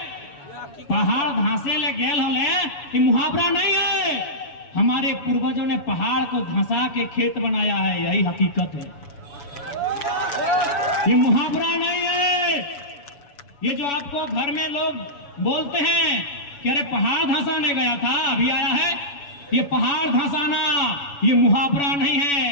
पहाड़ धंसे ले गेल होले, ये मुहावरा नहीं है। हमारे पूर्वजों ने पहाड़ को धंसा के खेत बनाया है, यही हकीकत है, ये मुहावरा नहीं है। ये जो आपको घर में लोग बोलते हैं कि अरे पहाड़ धंसाने गया था अभी आया है, ये पहाड़ धंसाना ये मुहावरा नहीं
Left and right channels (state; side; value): late; right; 7.1 ms